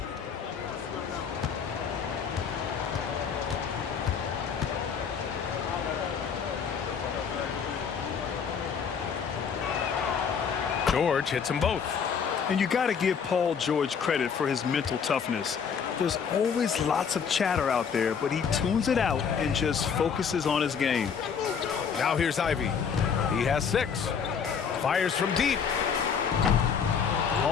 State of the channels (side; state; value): right; quieter; 6.7 dB